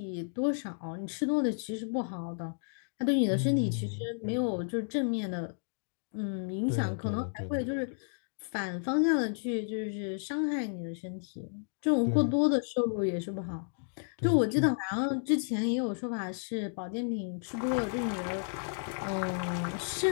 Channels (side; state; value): right; silent; digital silence